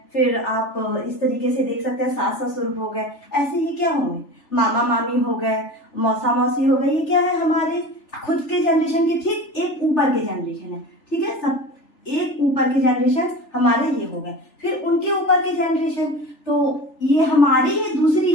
फिर आप इस तरीके से देख सकते हैं सास ससुर हो गए। ऐसे ही क्या होंगे, मामा मामी हो गए, मौसा मौसी हो गए। ये क्या है, हमारे खुद के जनरेशन के ठीक एक ऊपर के जनरेशन है। ठीक है, सब एक ऊपर के जनरेशन हमारे ये हो गए, फिर उनके ऊपर के जनरेशन, तो ये हमारी ये दूसरी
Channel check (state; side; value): late; right; 3.4 ms